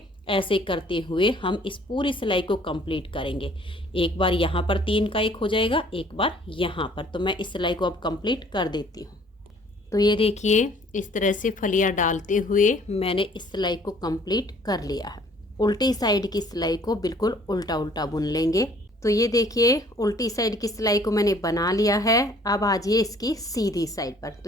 ऐसे करते हुए हम इस पूरी सिलाई को कंप्लीट करेंगे। एक बार यहाँ पर 3 का एक हो जाएगा, एक बार यहाँ पर। तो मैं इस सिलाई को अब कंप्लीट कर देती हूँ। तो ये देखिए इस तरह से फलियाँ डालते हुए मैंने इस सिलाई को कंप्लीट कर लिया है। उल्टी साइड की सिलाई को बिल्कुल उल्टा उल्टा बुन लेंगे। तो ये देखिए उल्टी साइड की सिलाई को मैंने बना लिया है। अब आ जाइए इसकी सीधी साइड पर।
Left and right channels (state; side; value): normal; both; correlation 0.57